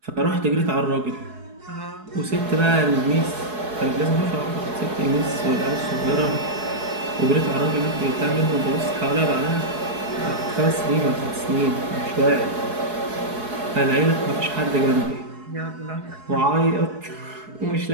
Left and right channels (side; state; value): left; late; 4.7 ms